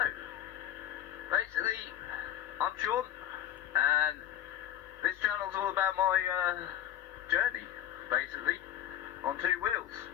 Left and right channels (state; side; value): quieter; right; 11.7 dB